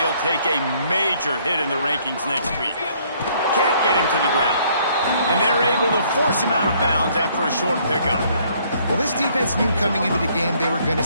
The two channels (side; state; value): both; inverted; correlation -0.64